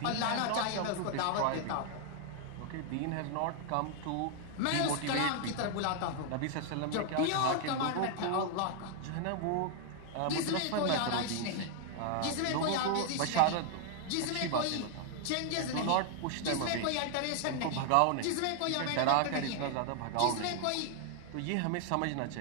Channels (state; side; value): different; both; correlation 0.00